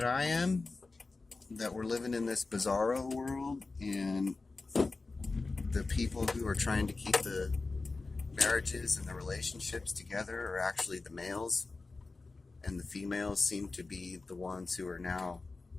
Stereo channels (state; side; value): quieter; right; 3.7 dB